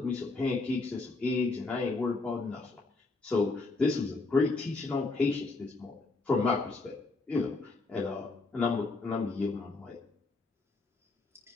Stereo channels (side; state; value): right; quieter; 3.5 dB